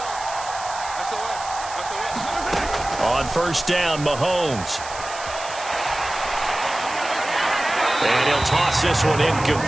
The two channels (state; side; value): noise; right; hiss, 12 dB below the sound